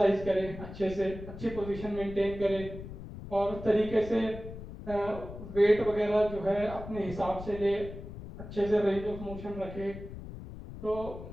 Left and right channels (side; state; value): left; noise; rumble, 12 dB below the sound